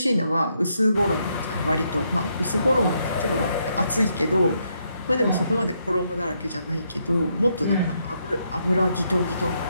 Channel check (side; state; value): both; inverted; correlation -0.77